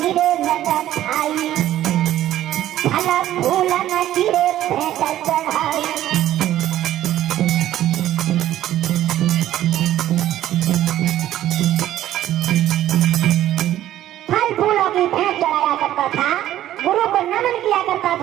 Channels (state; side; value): quieter; left; 13.0 dB